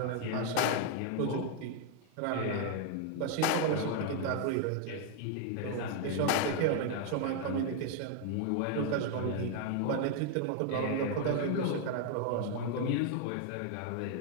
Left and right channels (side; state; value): both; different; correlation 0.00